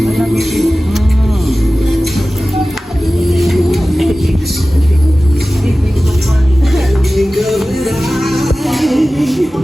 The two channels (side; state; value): both; normal; correlation 0.96